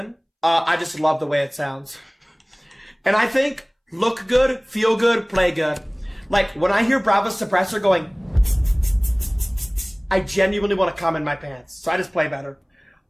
I just love the way it sounds. And I think look good, feel good, play good. Like, when I hear Brava's Suppressor going, I genuinely want to come in my pants. So I just play better.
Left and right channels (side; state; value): both; identical; correlation 1.00